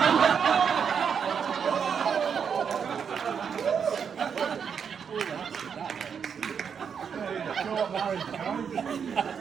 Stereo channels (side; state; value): left; quieter; 7.0 dB